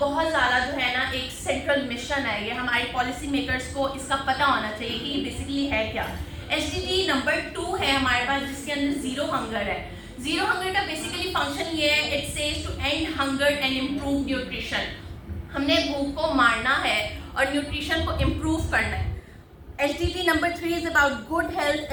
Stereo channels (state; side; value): identical; both; correlation 1.00